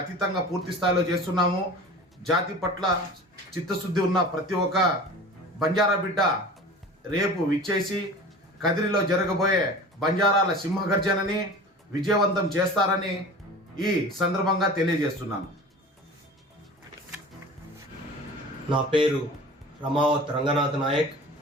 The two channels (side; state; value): both; normal; correlation 0.38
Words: అతీతంగా పూర్తి స్థాయిలో చేస్తున్నాము. జాతి పట్ల చిత్తశుద్ధి ఉన్న ప్రతి ఒక్క బంజారా బిడ్డ రేపు విచ్చేసి కదిరిలో జరగబోయే బంజారాల సింహగర్జనని విజయవంతం చేస్తారని ఈ సందర్భంగా తెలియజేస్తున్నాను. నా పేరు రమావత్ రంగనాథ్ నాయక్.